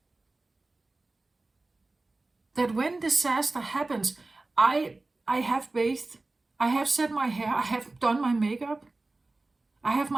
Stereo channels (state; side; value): quieter; left; 3.2 dB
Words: That when disaster happens, I have bathed, I have set my hair, I have done my makeup, I have